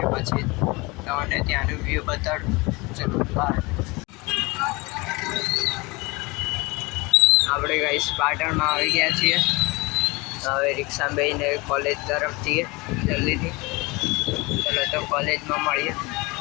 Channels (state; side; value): quieter; right; 25.0 dB